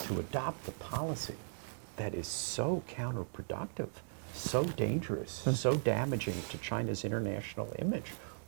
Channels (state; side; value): silent; left; digital silence